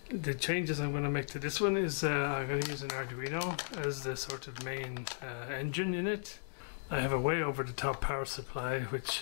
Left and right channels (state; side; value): silent; right; digital silence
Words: The changes I'm going to make to this one is I'm going to use an Arduino as the sort of main engine in it. I have a way over the top power supply,